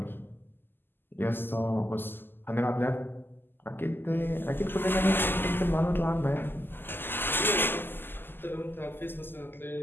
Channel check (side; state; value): right; late; 0.097 ms